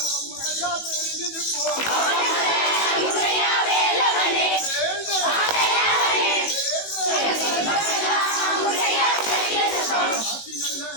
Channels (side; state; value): right; late; 18 ms